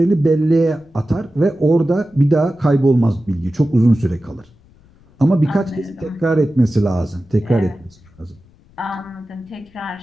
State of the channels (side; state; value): left; noise; rumble, 29 dB below the sound